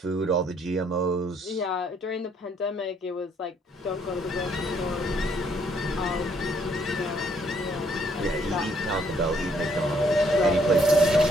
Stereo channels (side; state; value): both; normal; correlation 0.68